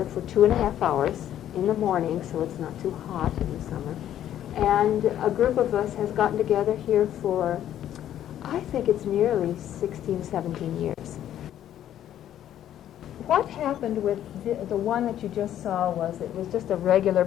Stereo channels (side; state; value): right; quieter; 11.3 dB